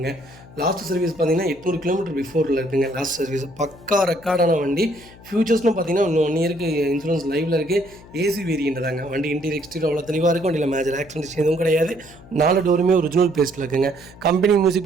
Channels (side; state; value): left; noise; hum, 21 dB below the sound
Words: லாஸ்ட் சர்வீஸ் பார்த்தீங்கன்னா 800 கிலோமீட்டர் பிஃபோரில் இருக்குங்க. லாஸ்ட் சர்வீஸ் பக்கா ரெக்கார்டான வண்டி. ஃபியூச்சர்ஸ்னு பார்த்தீங்கன்னா இன்னும் 1 இயருக்கு இன்சூரன்ஸ் லைவில் இருக்குது. ஏசி வேரியண்ட் தாங்க. வண்டி இன்டீரியர் எக்ஸ்டீரியர் அவ்வளோ தெளிவாக இருக்கும். வண்டியில் மேஜர் ஆக்சிடென்ட்ஸ் எதுவும் கிடையாது. 4 டோருமே ஒரிஜினல் பேஸ்ட்டில் இருக்குங்க. கம்பெனி மியூசிக்